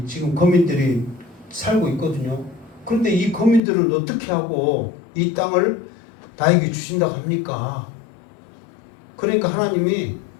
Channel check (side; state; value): right; drops out; at 3.6 s